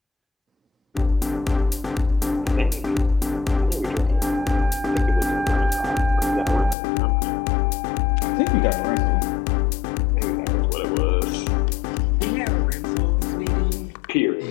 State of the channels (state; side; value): drops out; right; at 6.8 s